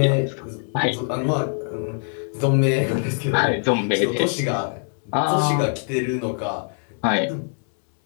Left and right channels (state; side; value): silent; right; 60 dB below the other